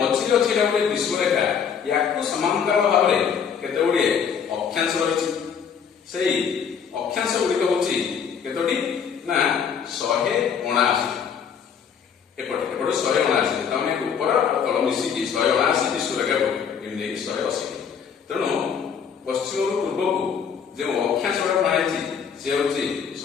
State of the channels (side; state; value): right; quieter; 7.1 dB